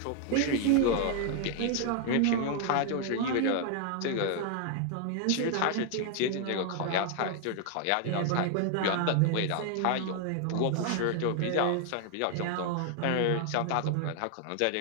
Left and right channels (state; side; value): different; both; correlation 0.00